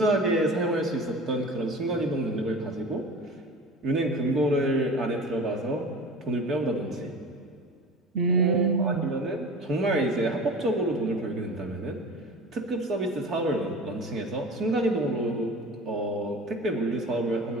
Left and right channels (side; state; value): both; normal; correlation 0.36